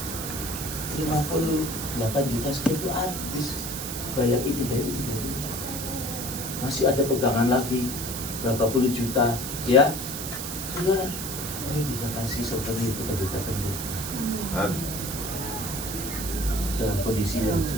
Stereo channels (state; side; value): noise; right; hiss, 6 dB below the sound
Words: 58 juta sekian itu habis. Bayar ini dari ini. Masih ada pegangan lagi berapa puluh juta, ya. Saudara, saya bisa kasih souvenir kepada teman. Dalam kondisi yang